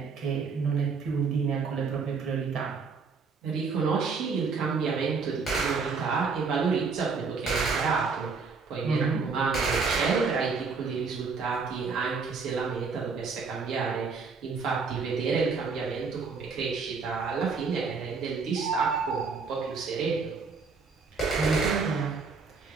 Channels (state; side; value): quieter; left; 4.9 dB